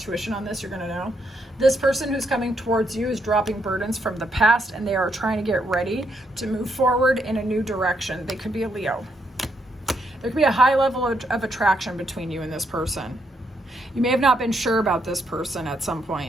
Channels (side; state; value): both; normal; correlation 0.77